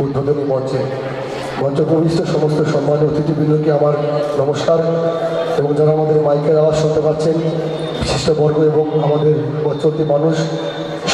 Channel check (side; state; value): both; identical; correlation 1.00